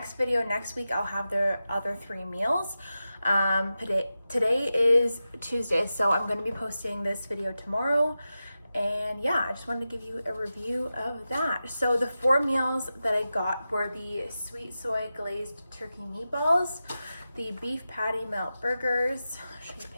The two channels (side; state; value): both; inverted; correlation -0.92